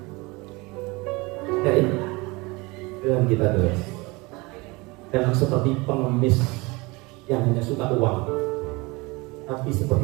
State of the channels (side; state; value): left; quieter; 24.7 dB